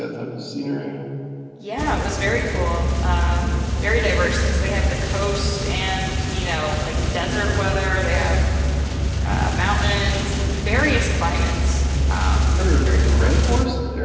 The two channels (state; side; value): identical; both; correlation 1.00